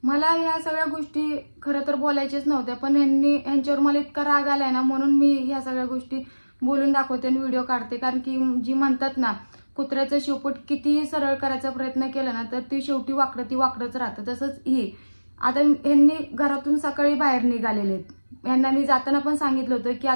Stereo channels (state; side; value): inverted; both; correlation -1.00